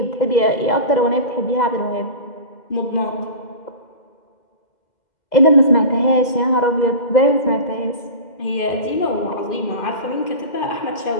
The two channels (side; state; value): right; late; 2.0 ms